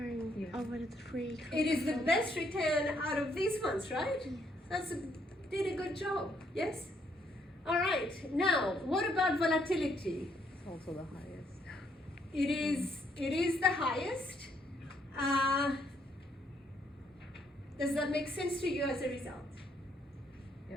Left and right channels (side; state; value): both; normal; correlation 0.71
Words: Yeah. over the 3. It is the best return out of these ones, right? Did a good job, yes? All right, now, what about volatility? It's also the highest. It is the highest. Does that make sense to you as a result?